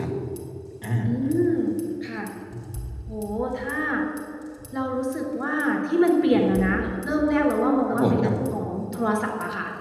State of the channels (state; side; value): identical; both; correlation 1.00